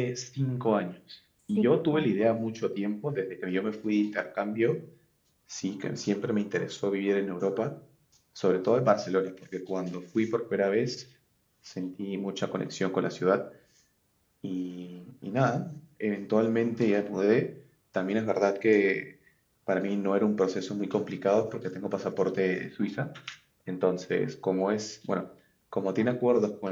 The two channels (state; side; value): identical; both; correlation 1.00